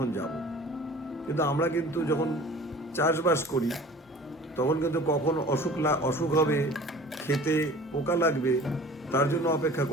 যাব। কিন্তু আমরা কিন্তু যখন চাষবাস করি তখন কিন্তু কখন অসুখ হবে, খেতে পোকা লাগবে, তার জন্য অপেক্ষা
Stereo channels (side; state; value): both; normal; correlation 0.44